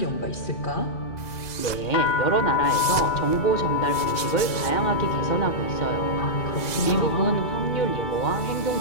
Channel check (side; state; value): right; late; 2.0 ms